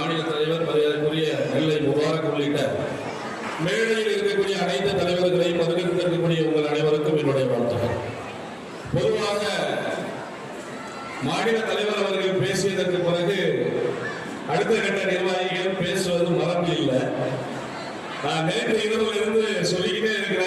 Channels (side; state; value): both; identical; correlation 1.00